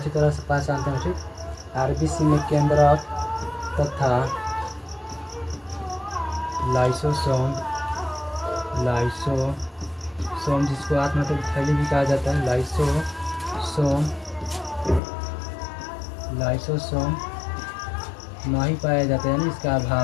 तरह से पहचानते हैं, ठीक। आरबीसी में केंद्रक तथा लाइसोसोम जिसको आत्मतक थैली भी कहा जाता है, लाइसोसोम नहीं पाया जाता है, यानी इसका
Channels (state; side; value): drops out; right; at 15.0 s